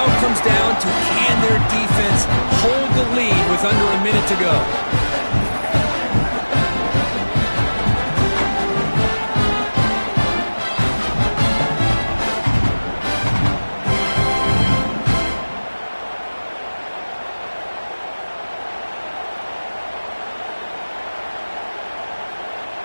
it comes down to can their defense hold the lead with under a minute to go.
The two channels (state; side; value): inverted; both; correlation -1.00